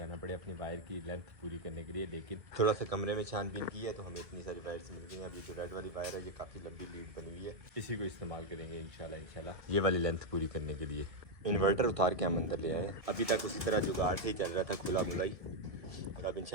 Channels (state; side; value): late; left; 1.7 ms